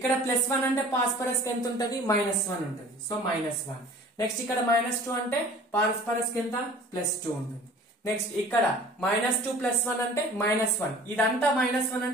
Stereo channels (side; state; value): both; normal; correlation 0.46